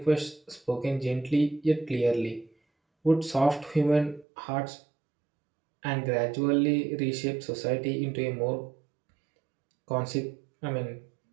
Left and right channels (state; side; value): drops out; left; at 4.2 s